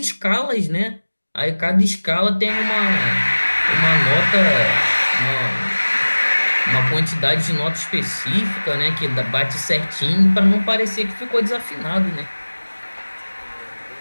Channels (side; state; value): both; inverted; correlation -1.00